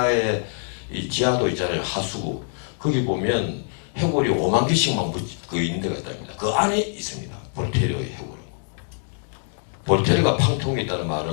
이 지하도 있잖아요. 하수구. 거기 보면 해골이 5만 개씩만 그 있는 데가 있답니다. 그 안에 있습니다. 볼테르의 해골은. 볼테르가 팡테옹에 있다는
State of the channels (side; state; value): right; silent; 63 dB below the other